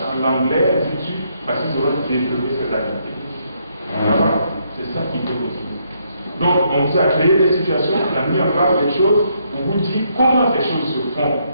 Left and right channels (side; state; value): both; inverted; correlation -0.74